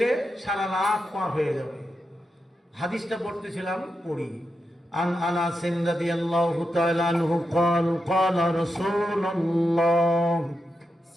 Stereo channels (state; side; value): normal; both; correlation 0.87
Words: সারা রাত পার হয়ে যাবে। হাদিসটা পড়তেছিলাম, পড়ি। عن أنس رضي الله تعالى عنه قال قال رسول الله